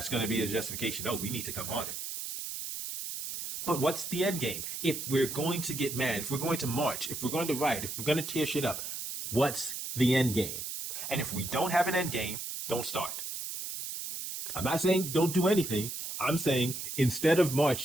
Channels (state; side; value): noise; right; hiss, 6 dB below the sound